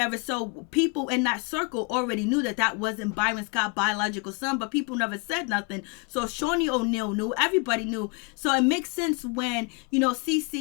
So people in that circle already knew that wasn't Byron Scott's biological son, but people never said nothing. So Shaunie O'Neal knew, everybody knew. So it makes sense when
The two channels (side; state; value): right; quieter; 29.6 dB